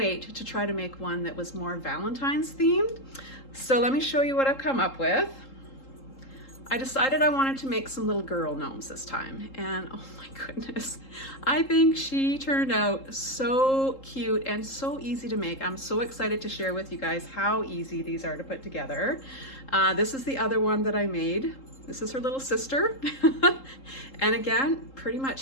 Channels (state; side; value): late; right; 3.8 ms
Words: to try to make one that was more Valentine's themed. So let me show you what I've come up with. I decided I wanted to make some little girl gnomes this time, and oh my goodness, I think she turned out so cute and so easy to make. I'm so excited to share with you guys how easy these are to put together. This is the other one that I made. This is her little sister. And again, pretty